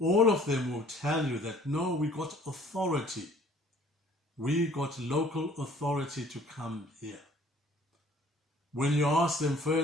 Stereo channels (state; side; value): normal; both; correlation 0.54